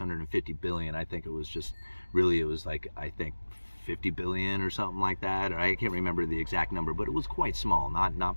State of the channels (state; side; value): inverted; both; correlation -1.00